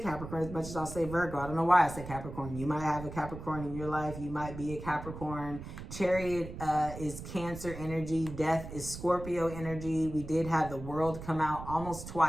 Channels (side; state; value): right; noise; rumble, 11 dB below the sound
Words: as much as I'll say Virgo. I don't know why I said Capricorn. You might have a Capricorn in your life. You might be a Capricorn. Chariot is Cancer energy. Death is Scorpio energy. We did have the World come out almost